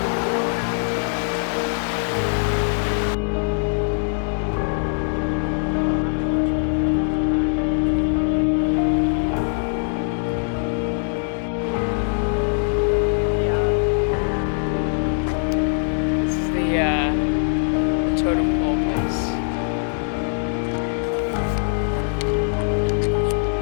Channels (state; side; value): silent; right; 64 dB below the other